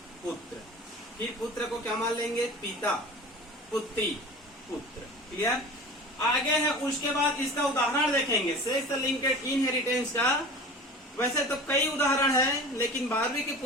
पुत्र। फिर पुत्र को क्या मान लेंगे, पिता पुत्री पुत्र। क्लियर? आगे है उसके बाद इसका उदाहरण देखेंगे सेक्स लिंकेड इनहेरिटेंस का। वैसे तो कई उदाहरण है, लेकिन 12वीं की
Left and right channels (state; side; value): normal; both; correlation 0.37